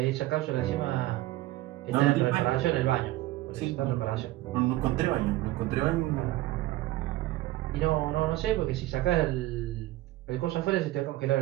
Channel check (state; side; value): quieter; left; 16.9 dB